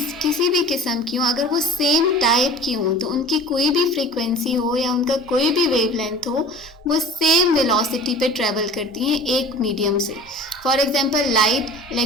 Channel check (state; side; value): normal; both; correlation 0.41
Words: किसी भी किस्म की हो अगर वो सेम टाइप की हो तो उनकी कोई भी फ्रीक्वेंसी हो या उनका कोई भी वेव लेंथ हो वो सेम वेलोसिटी पे ट्रेवल करती हैं एक मीडियम से। For example light,